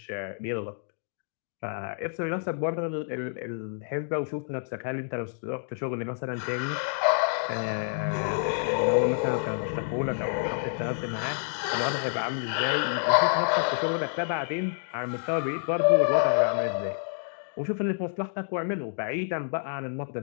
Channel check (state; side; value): silent; right; digital silence